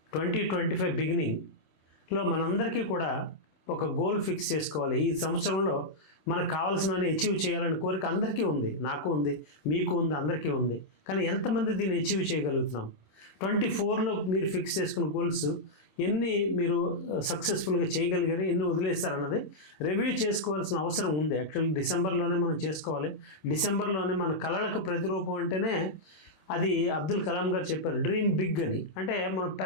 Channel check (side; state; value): right; late; 26 ms